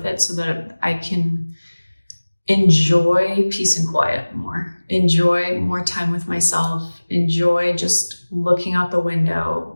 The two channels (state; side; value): inverted; both; correlation -1.00